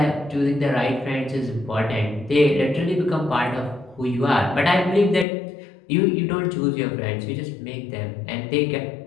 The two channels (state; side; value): drops out; right; at 5.2 s